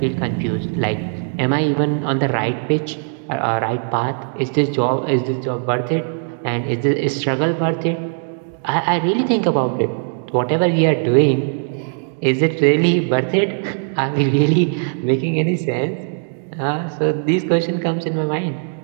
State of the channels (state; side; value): silent; left; 61 dB below the other